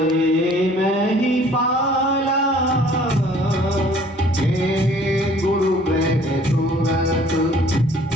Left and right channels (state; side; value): normal; both; correlation 0.55